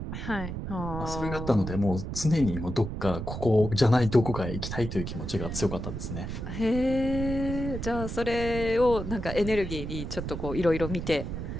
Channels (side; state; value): right; noise; rumble, 6 dB below the sound